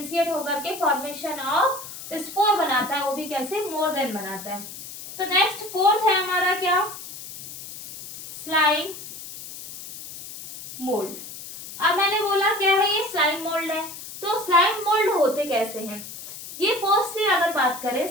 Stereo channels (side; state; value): left; noise; hiss, 12 dB below the sound